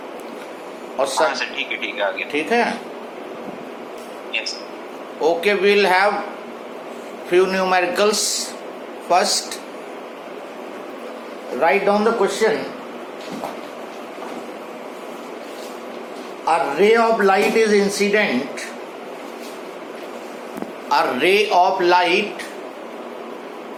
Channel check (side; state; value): both; identical; correlation 1.00